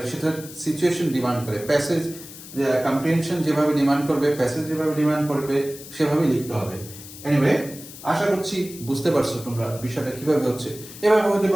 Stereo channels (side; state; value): left; noise; hiss, 15 dB below the sound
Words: সেটা সিচুয়েশন ডিমান্ড করে, প্যাসেজ কম্প্রিহেনশন যেভাবে ডিমান্ড করবে, প্যাসেজ যেভাবে ডিমান্ড করবে সেভাবেই লিখতে হবে। এনিওয়ে, আশা করছি বুঝতে পারছো তোমরা বিষয়টা কিভাবে হচ্ছে। এভাবে হতে